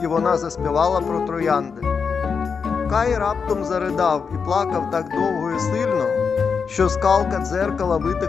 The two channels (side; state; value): right; quieter; 5.8 dB